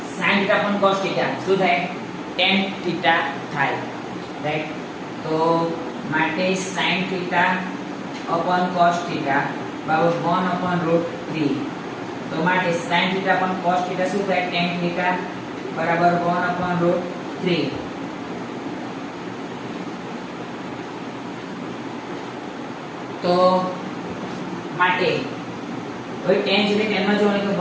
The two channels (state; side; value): identical; both; correlation 1.00